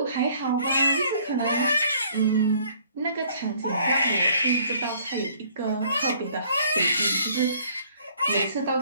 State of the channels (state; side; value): inverted; both; correlation -0.59